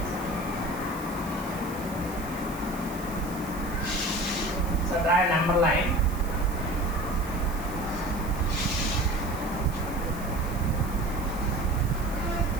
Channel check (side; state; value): right; noise; hiss, 16 dB below the sound